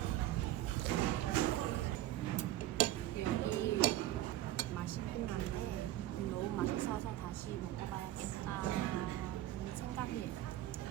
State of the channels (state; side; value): quieter; left; 14.2 dB